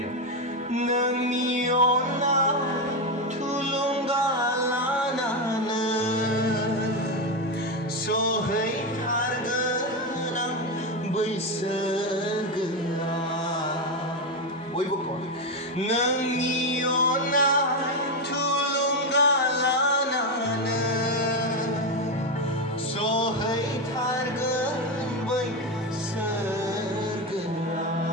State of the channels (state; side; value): normal; both; correlation 0.10